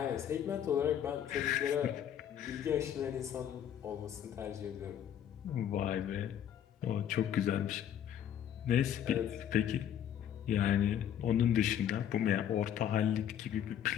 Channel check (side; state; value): right; quieter; 9.8 dB